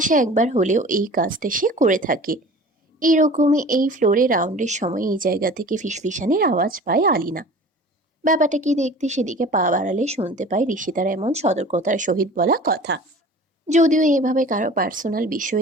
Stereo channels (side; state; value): both; normal; correlation 0.42